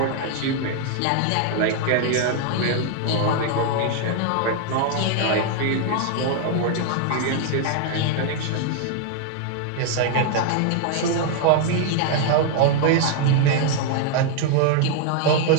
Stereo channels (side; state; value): both; different; correlation 0.00